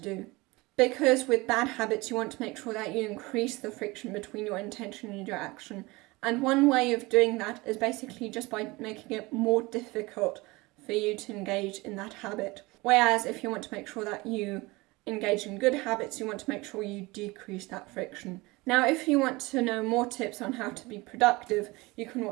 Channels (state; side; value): quieter; left; 22.8 dB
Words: do. Because with bad habits, you want to make sure that you increase the friction between your intention and your action. And one way of doing that is basically just by making it more difficult for you to engage in that habit. Whereas if you want to make sure that you engage in good habits, you want to make sure you decrease that friction. Now, if you want to know more tips on how to be productive, you can